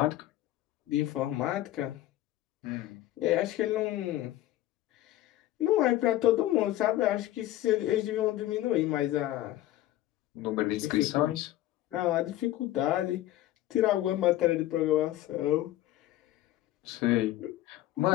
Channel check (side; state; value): right; quieter; 14.7 dB